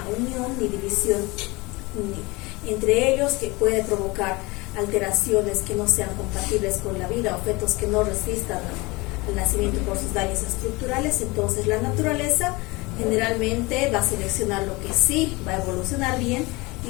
unión ni división entre ellos, que puede provocar alteraciones que no sean compatibles con la vida o fetos que no resistan al nacimiento por sus daños estructurales. Entonces la naturaleza generalmente va a seleccionar lo que sí va a evolucionar bien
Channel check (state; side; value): quieter; right; 24.1 dB